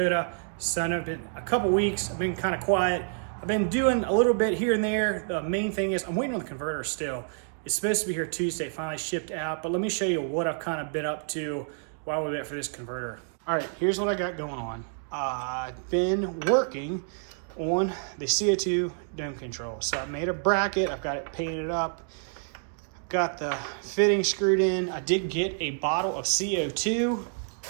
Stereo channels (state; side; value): silent; left; digital silence